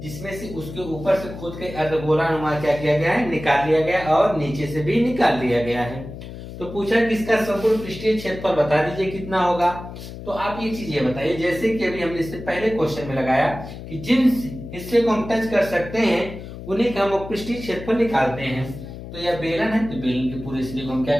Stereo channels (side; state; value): left; noise; hum, 12 dB below the sound